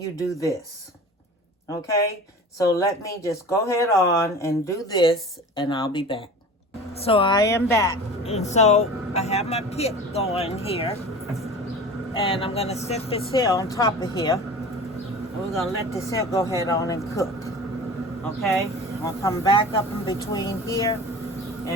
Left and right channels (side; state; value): both; normal; correlation 0.38